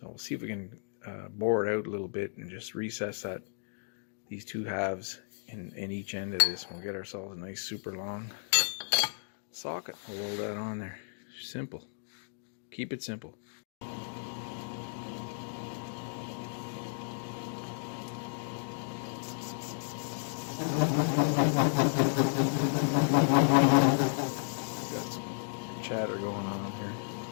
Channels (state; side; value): silent; right; digital silence